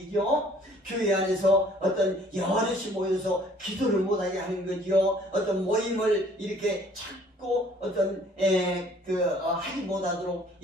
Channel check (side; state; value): both; normal; correlation 0.57